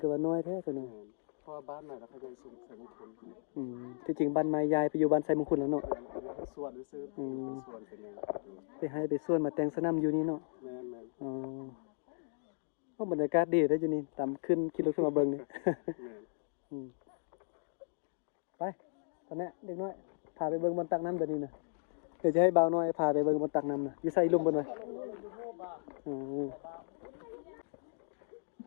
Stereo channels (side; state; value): right; silent; digital silence